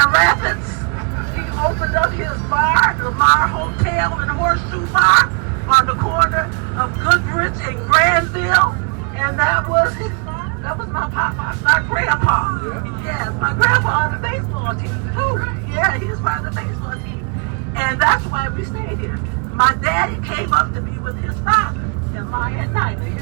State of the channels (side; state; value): left; quieter; 38.1 dB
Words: Rapids. He opened up his bar, the Lamar Hotel and Horseshoe Bar, on the corner of Goodrich and Granville, and that was my grandpa. Yes, my grandpa on the baseball team too. Yeah, he was part of the baseball team, and that's why we stayed here. My daddy came up to be with his father, and my Aunt Nina,